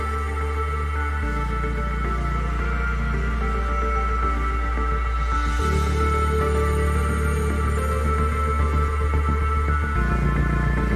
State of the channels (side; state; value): both; identical; correlation 1.00